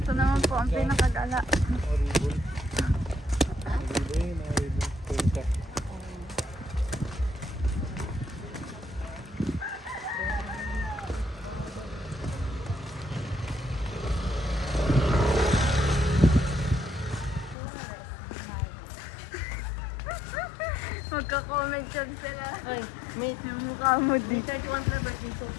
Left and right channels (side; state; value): right; drops out; at 17.6 s